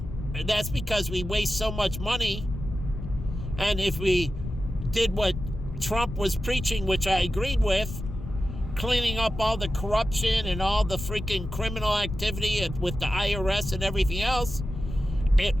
that's because we waste so much money And if we did what Trump was preaching, which I agreed with, cleaning up all the corruption and all the freaking criminal activity with the IRS and everything else,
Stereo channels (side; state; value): left; noise; rumble, 8 dB below the sound